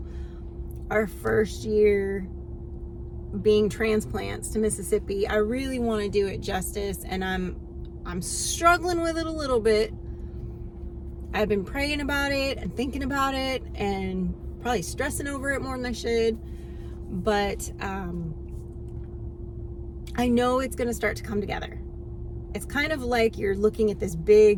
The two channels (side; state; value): both; identical; correlation 1.00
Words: our first year being transplants to Mississippi. I really want to do it justice, and I'm struggling with it a little bit. I've been praying about it and thinking about it and probably stressing over it more than I should. But I know it's going to start to come together. It's kind of like you're looking at this